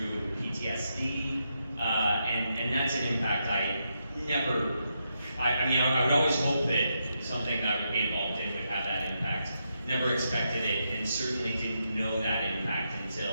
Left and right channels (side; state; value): both; inverted; correlation -0.83